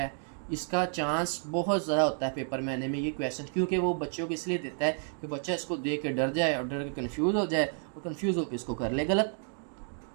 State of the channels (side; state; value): left; silent; 57 dB below the other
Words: इसका चांस बहुत ज़्यादा होता है पेपर में आने में ये क्वेश्चन, क्योंकि वो बच्चों को इसलिए देता है कि बच्चा इसको देख के डर जाए और डर के कन्फ्यूज़ हो जाए और कन्फ्यूज़ होकर इसको कर ले गलत।